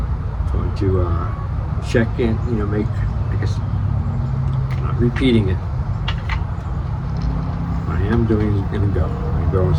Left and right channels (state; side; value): identical; both; correlation 1.00